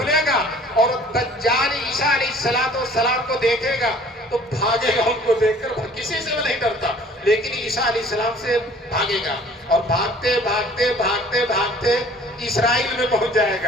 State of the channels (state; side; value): normal; both; correlation 0.52